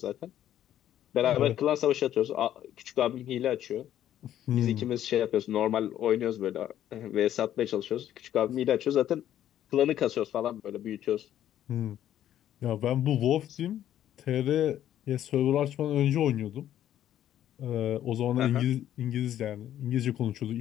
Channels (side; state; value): right; quieter; 11.5 dB